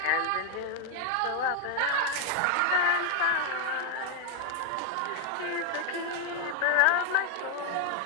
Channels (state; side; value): different; both; correlation 0.00